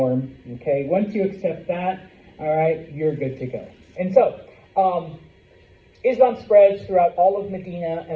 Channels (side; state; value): both; identical; correlation 1.00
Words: okay, once you accept that, all right, you're good to go. And so, Islam spreads throughout all of Medina